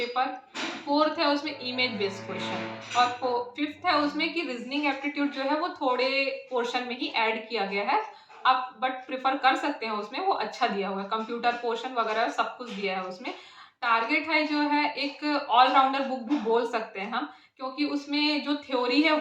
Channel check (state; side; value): identical; both; correlation 1.00